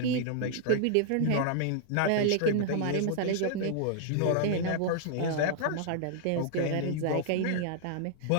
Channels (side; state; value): both; different; correlation -0.01